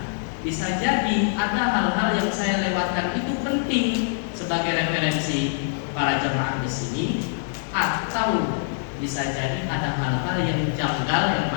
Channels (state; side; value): silent; right; digital silence